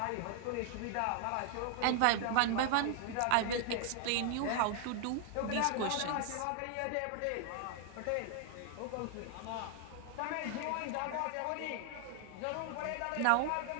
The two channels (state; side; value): different; both; correlation 0.00